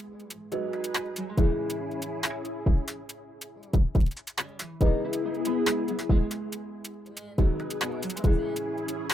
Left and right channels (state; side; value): normal; both; correlation 0.85